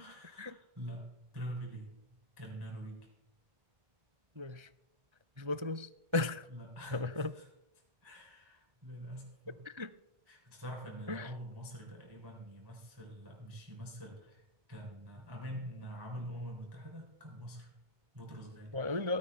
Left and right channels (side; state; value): left; late; 1.3 ms